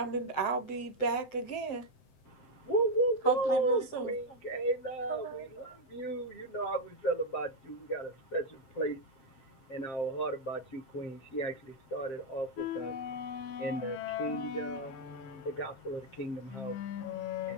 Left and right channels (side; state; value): right; late; 7.6 ms